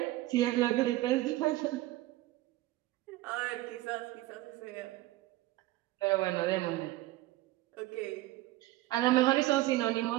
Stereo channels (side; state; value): left; quieter; 17.4 dB